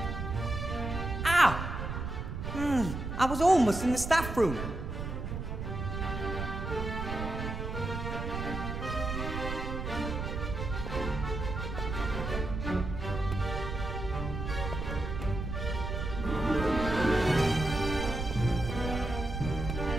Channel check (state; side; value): noise; right; rumble, 4 dB below the sound